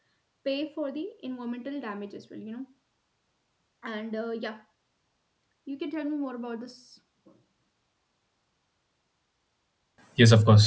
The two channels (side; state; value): both; identical; correlation 1.00